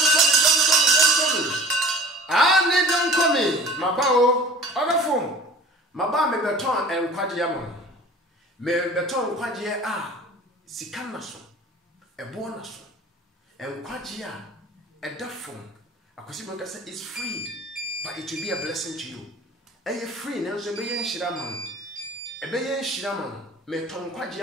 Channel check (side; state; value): both; normal; correlation 0.44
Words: ani don komi mabao odafo maba me beton enkwagye ama me beton kwagye a sika na so ebo na so enkwagye a edafo akosi bonka say it's free but it will be a blessing to you eye free na so be yen hira man ebe yen hira man me ton kwagye